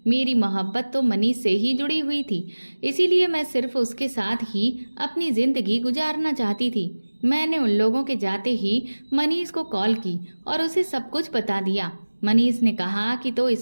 मेरी मोहब्बत तो मनीष से ही जुड़ी हुई थी, इसीलिए मैं सिर्फ उसके साथ ही अपनी जिंदगी गुजारना चाहती थी। मैंने उन लोगों के जाते ही मनीष को कॉल की और उसे सब कुछ बता दिया। मनीष ने कहा कि तो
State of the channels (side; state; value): both; inverted; correlation -1.00